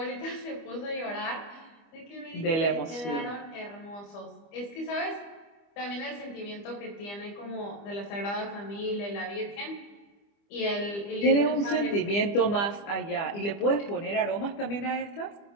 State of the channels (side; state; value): right; late; 25 ms